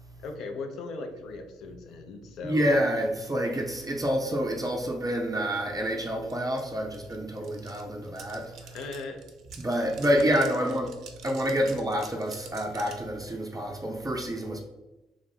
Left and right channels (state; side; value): normal; both; correlation 0.77